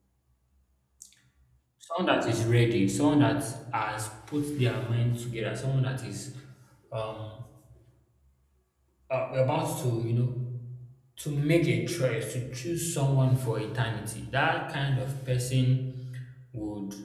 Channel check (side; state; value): both; identical; correlation 1.00